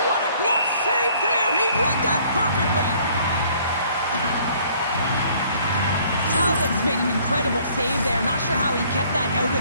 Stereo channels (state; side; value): inverted; both; correlation -0.59